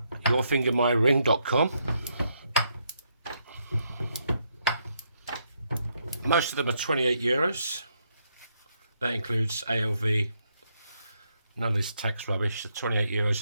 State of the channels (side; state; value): both; inverted; correlation -0.76